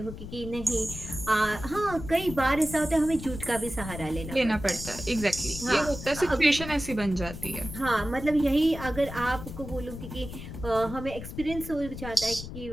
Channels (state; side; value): noise; left; rumble, 10 dB below the sound